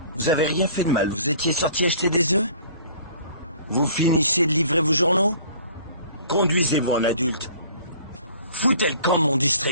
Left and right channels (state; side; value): inverted; both; correlation -0.51